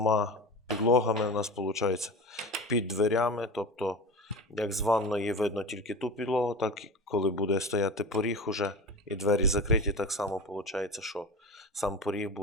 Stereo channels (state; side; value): normal; both; correlation 0.30